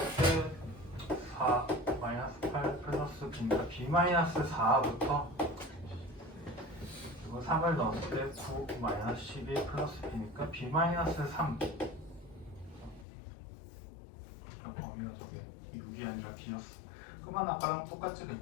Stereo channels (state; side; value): drops out; right; at 13.1 s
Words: 때 4 마이너스 8 플러스 B니까 B 마이너스 4부터 그리고 3을 넣었을 때 9 마이너스 12 플러스 B니까 B 마이너스 3 범위가 저게 6이 아니라 B였어. 그러면 아까랑 똑같지.